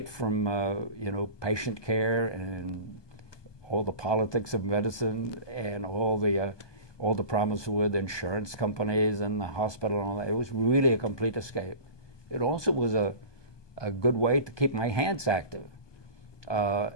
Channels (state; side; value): late; right; 1.2 ms